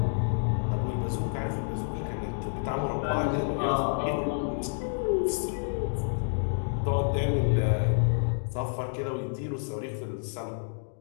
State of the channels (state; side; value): silent; right; digital silence